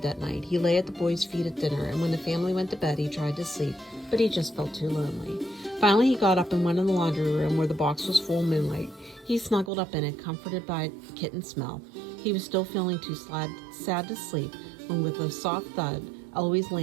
that night. He lay at the boys' feet at dinner, and when the family went to bed, he tried to sleep, but he just felt too lonely. Finally, he got up and went in the laundry room where the box was full of moonlight. He snuggled up in it, comforted by kitten smell. He was still feeling too sad to sleep when, with a soft thud, Eloise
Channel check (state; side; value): drops out; left; at 9.7 s